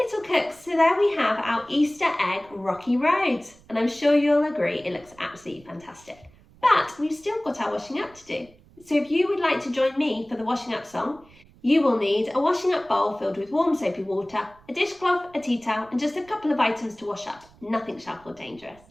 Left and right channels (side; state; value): right; noise; rumble, 27 dB below the sound